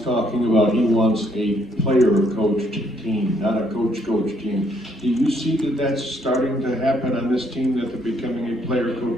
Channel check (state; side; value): normal; both; correlation 0.70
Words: about he wants a player-coached team, not a coach-coach team. Do you see that that's starting to happen on this team, that they're becoming a